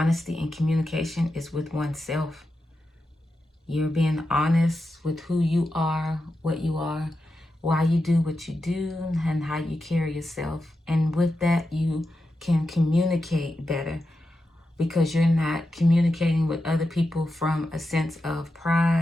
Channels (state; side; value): normal; both; correlation 0.89